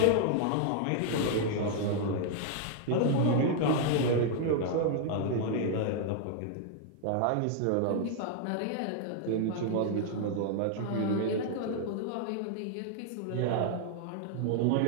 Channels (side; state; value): both; different; correlation 0.00